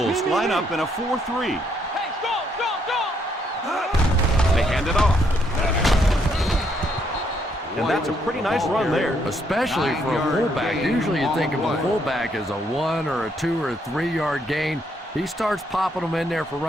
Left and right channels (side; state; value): both; normal; correlation 0.73